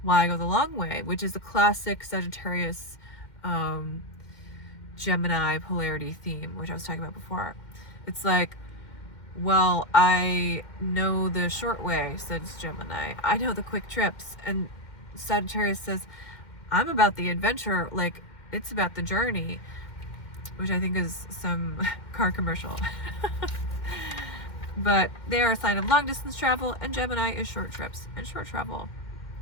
why go the long way? Which is the classic Sagittarius Gemini polarity theme, which I was talking about before. It's like, well, I know the short way, says Gemini. I know the quick trips. And Sagittarius says, I'm about the adventure, like, it's about the journey. Which I think is some car commercial. But they are a sign of long distance travel, and Gemini is short trips and short travel.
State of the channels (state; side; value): late; right; 2.1 ms